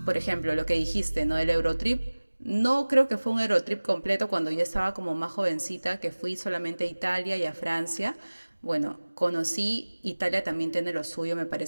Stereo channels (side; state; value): both; inverted; correlation -1.00